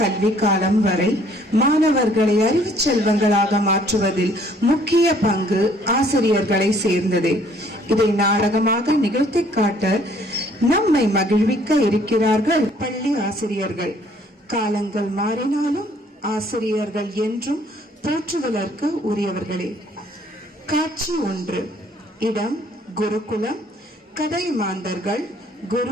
காலம் வரை மாணவர்களை அறிவு செல்வங்களாக மாற்றுவதில் முக்கிய பங்கு ஆசிரியர்களை சேர்ந்ததே. இதை நாடகமாக நிகழ்த்தி காட்ட நம்மை மகிழ்விக்க இருக்கிறார்கள் பள்ளி ஆசிரியர்கள். காலங்கள் மாறினாலும் ஆசிரியர்கள் என்றும் போற்றுதலுக்கு உரியவர்களே. காட்சி 1. இடம் குருகுலம். கதை மாந்தர்கள்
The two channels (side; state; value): both; normal; correlation 0.61